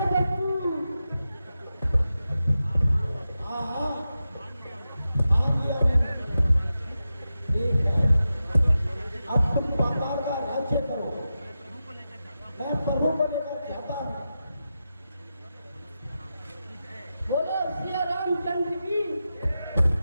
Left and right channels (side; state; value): both; inverted; correlation -0.91